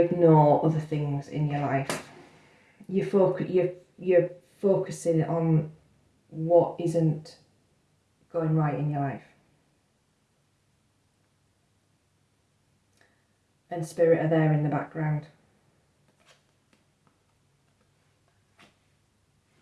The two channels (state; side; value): identical; both; correlation 1.00